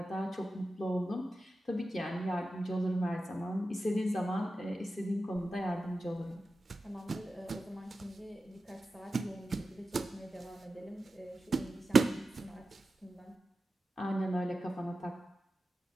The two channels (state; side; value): normal; both; correlation 0.93